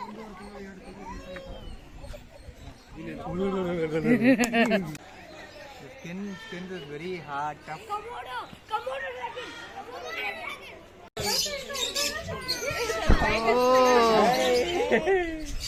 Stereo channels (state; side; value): identical; both; correlation 1.00